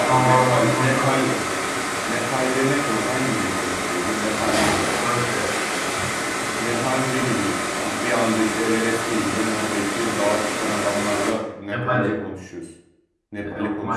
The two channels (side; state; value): both; identical; correlation 1.00